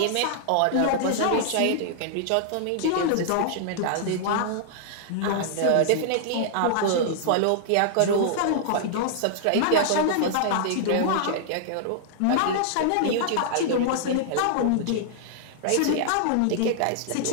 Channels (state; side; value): different; both; correlation -0.01